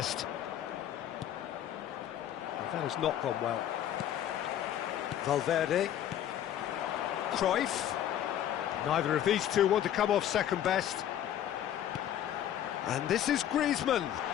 Well, that has not gone well. Valverde. Cruyff. Neither of these two want to come off second best. And this is Griezmann.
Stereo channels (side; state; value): right; quieter; 11.0 dB